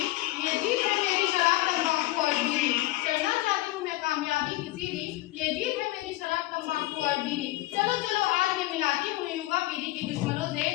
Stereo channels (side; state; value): right; quieter; 18.1 dB